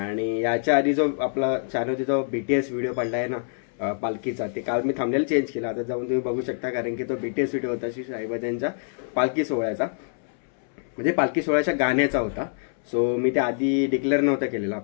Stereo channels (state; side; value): silent; right; 61 dB below the other